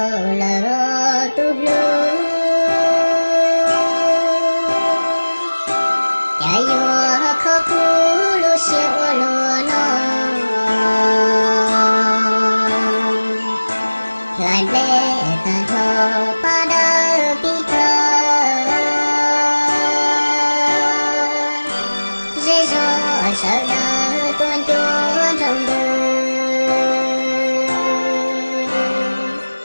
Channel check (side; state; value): both; inverted; correlation -1.00